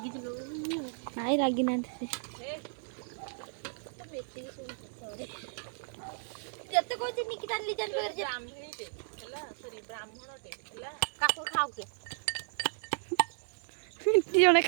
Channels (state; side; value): silent; left; digital silence